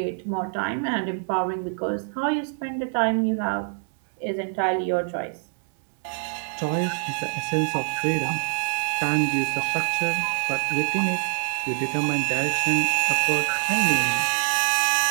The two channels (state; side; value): silent; left; digital silence